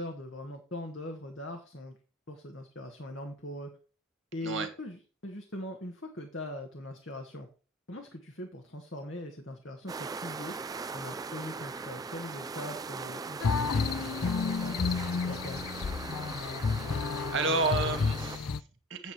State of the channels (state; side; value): normal; both; correlation 0.43